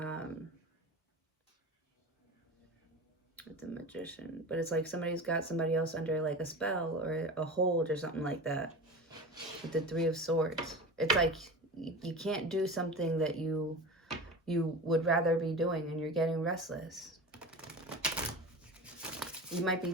With the Magician. But it's like somebody's got somebody else under like a spell or a hold or something like that. With the Three of Swords. It's like you can't do something that you you would rather be doing, and you're getting restless. You might be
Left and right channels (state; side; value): normal; both; correlation 0.31